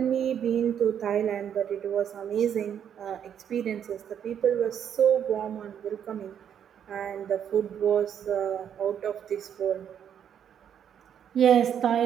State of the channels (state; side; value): quieter; left; 8.8 dB